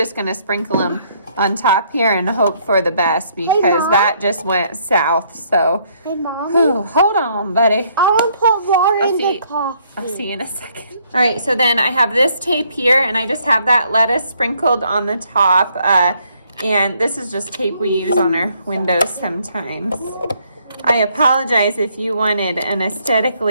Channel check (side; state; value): both; inverted; correlation -0.68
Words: gonna sprinkle them on top here and hope for the best because that just went south. So, Hey, Mommy. Hold on, buddy. I want to put water in the coffee. I'll see you in a second. All right, so then I have this tape here, and I just have that lettuce sprinkled on the top. And this is just tape we use on our windows sometimes. I apologize if you wanted an